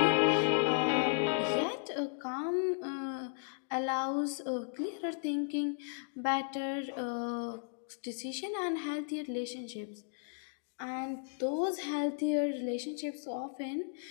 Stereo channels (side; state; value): right; silent; digital silence